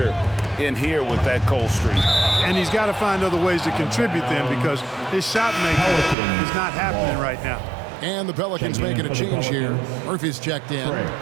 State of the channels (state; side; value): drops out; left; at 6.2 s